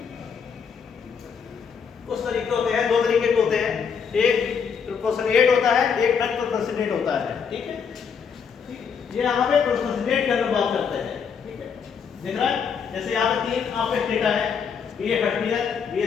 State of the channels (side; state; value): right; quieter; 6.5 dB